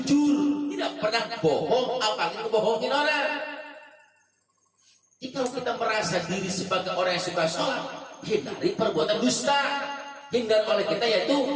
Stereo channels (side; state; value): both; identical; correlation 1.00